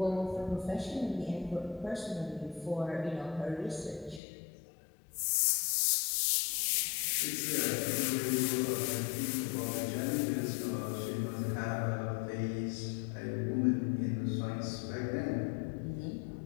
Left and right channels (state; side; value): drops out; right; at 4.2 s